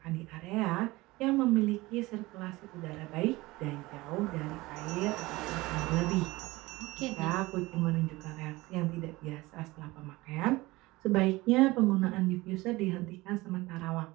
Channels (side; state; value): left; quieter; 20.7 dB